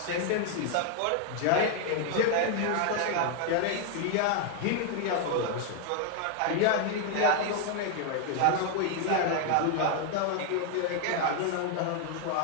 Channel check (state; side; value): different; both; correlation 0.00